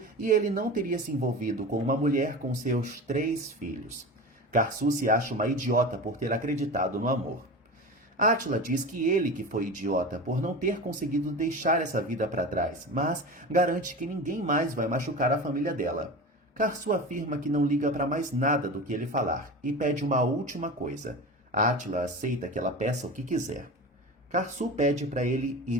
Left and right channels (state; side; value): normal; both; correlation 0.29